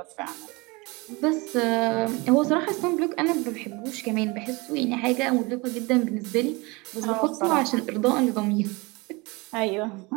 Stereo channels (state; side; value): quieter; left; 25.6 dB